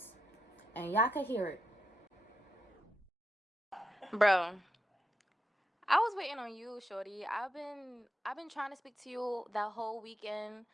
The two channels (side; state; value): both; normal; correlation 0.85